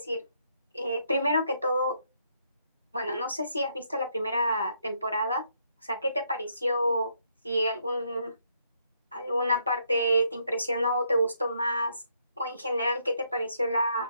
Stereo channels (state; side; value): inverted; both; correlation -0.73